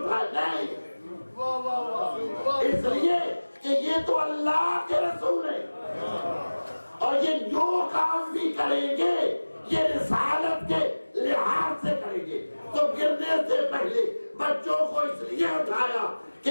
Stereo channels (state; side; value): inverted; both; correlation -1.00